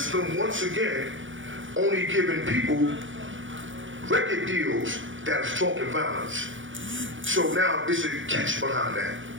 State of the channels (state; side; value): late; left; 0.56 ms